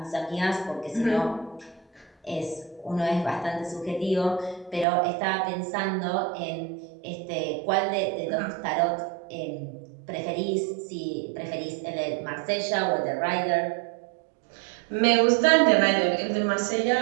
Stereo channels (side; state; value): left; drops out; at 4.9 s